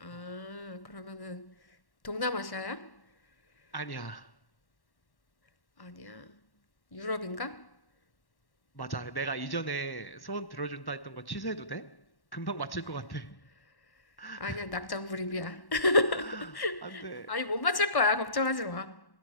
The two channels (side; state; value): right; late; 1.1 ms